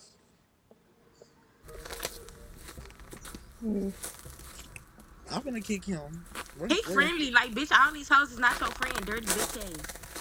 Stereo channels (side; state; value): both; identical; correlation 1.00